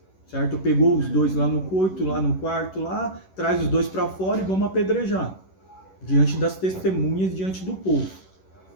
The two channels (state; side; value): late; right; 11 ms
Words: certo? Pegou os dois lá no coito, lá no quarto, lá, traz os dois para fora e vamos apedrejar, diante das testemunhas, diante do povo.